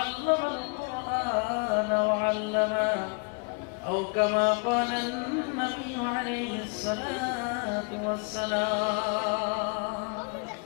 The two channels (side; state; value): right; quieter; 35.3 dB